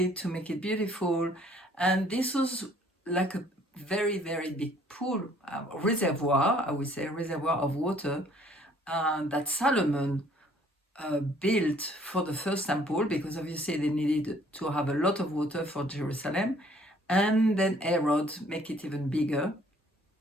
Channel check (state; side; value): normal; both; correlation 0.59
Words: to make it beautiful. And this was like a very, very big pool, reservoir, I would say, reservoir of water that Solomon built for the first temple, because obviously they needed to have a lot of water for Jerusalem. And then Herod make it even bigger